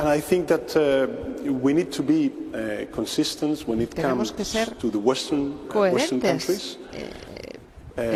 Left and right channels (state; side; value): identical; both; correlation 1.00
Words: I think that we need to be consistent when it comes to the Western countries. En